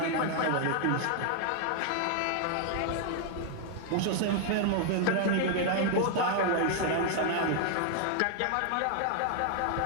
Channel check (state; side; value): different; both; correlation 0.00